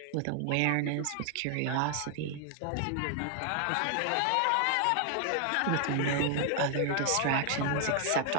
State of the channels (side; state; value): both; different; correlation 0.00